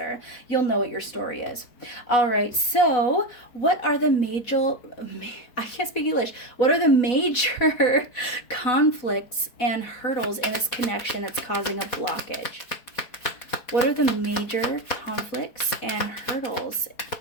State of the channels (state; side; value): late; right; 4.1 ms